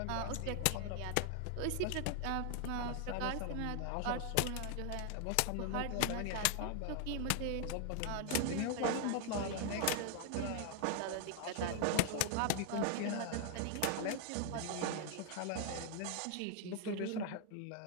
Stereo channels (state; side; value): different; both; correlation 0.00